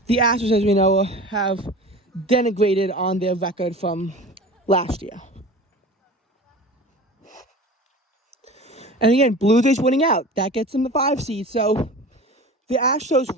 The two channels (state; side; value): normal; both; correlation 0.37